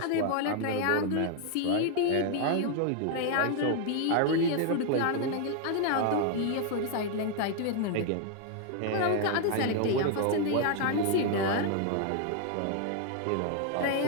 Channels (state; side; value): different; both; correlation 0.00